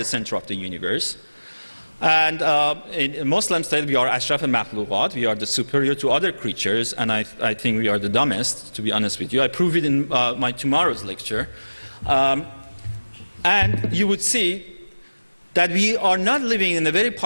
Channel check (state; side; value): inverted; both; correlation -1.00